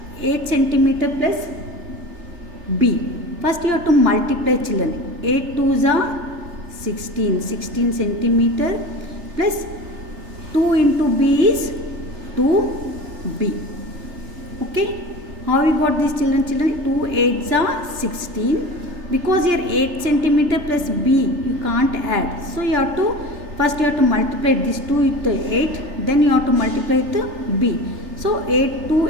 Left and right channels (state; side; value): late; left; 3.3 ms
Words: 8 centimeter plus B. First you have to multiply, children. 8 2s are 16 centimeter plus 2 into B is 2B. Okay, how we got this, children? 2 8s are 16. Because here 8 centimeter plus B you can't add. So you have to first you have to multiply this 2 with the 8. Then you have to multiply the B. So 8 2